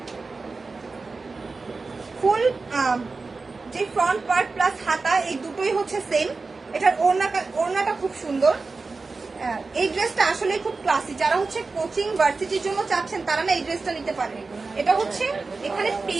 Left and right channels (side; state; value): left; quieter; 4.0 dB